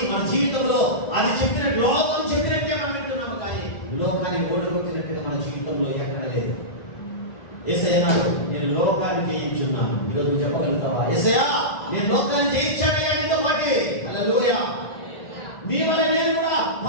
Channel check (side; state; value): right; late; 1.9 ms